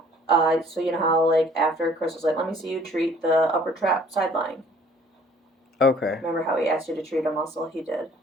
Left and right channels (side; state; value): both; normal; correlation 0.56